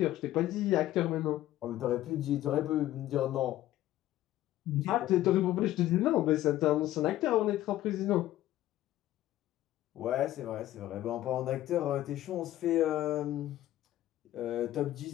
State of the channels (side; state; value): right; quieter; 14.3 dB